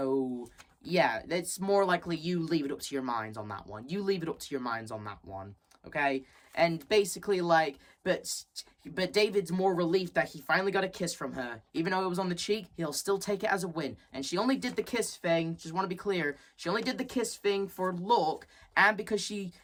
yeah, it's more likely you leave it up to your minds on that one. You leave it up to your minds on that one, okay? And basically, like, but David's more relieved that he finally got a kiss from her. Even though it was on the cheek, he'll still take it as a win. And she only did the kiss thing, just want to be clear, she only did the kiss thing for look, and because she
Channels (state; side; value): identical; both; correlation 1.00